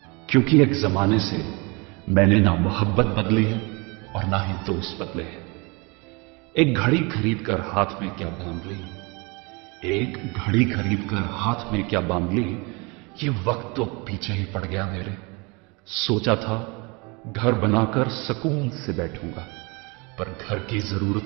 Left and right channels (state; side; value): quieter; left; 28.4 dB